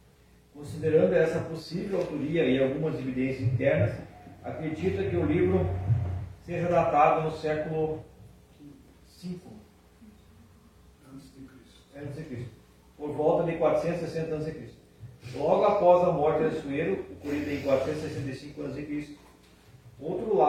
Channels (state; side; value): identical; both; correlation 1.00